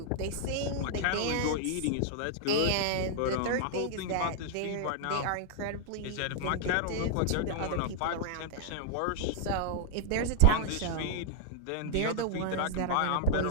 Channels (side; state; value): both; different; correlation -0.01